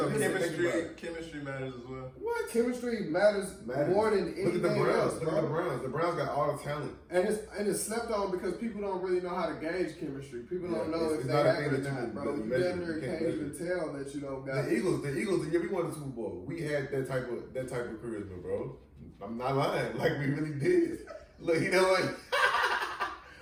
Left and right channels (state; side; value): identical; both; correlation 1.00